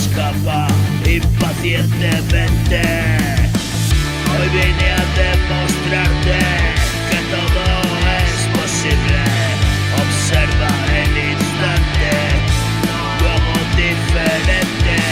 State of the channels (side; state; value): both; identical; correlation 1.00